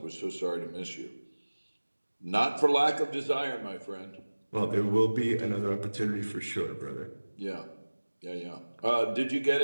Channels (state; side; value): inverted; both; correlation -1.00